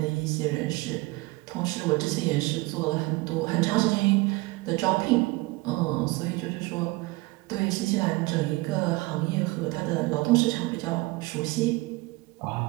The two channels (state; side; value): quieter; left; 22.4 dB